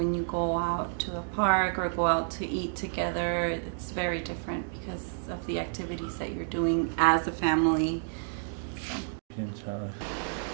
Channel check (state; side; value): silent; left; digital silence